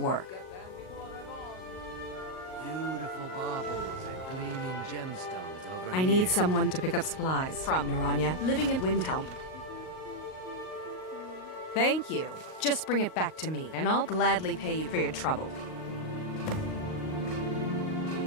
Beautiful baubles and gleaming gemstones over I need someone to pick up supplies from Naranya, living in Windhelm. Thank you. Just bring it back to me, and I'll gladly pay you for your trouble.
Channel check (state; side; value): late; right; 38 ms